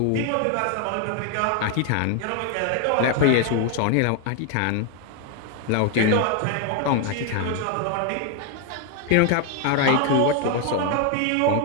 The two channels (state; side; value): different; both; correlation 0.01